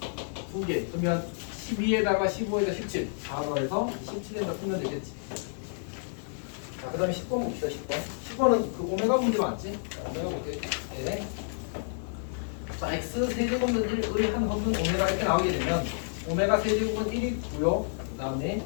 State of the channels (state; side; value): silent; right; digital silence